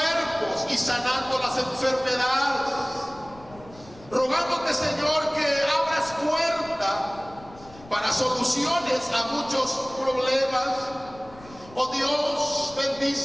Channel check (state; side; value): noise; left; rumble, 21 dB below the sound